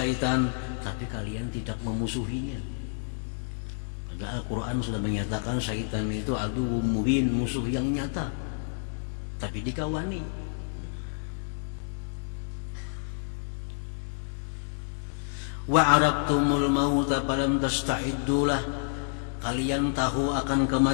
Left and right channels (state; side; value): silent; right; digital silence